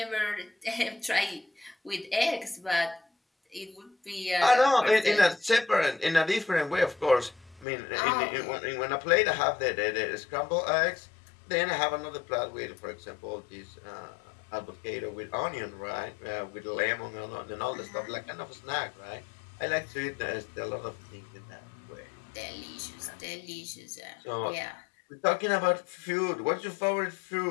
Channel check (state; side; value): drops out; right; at 7.7 s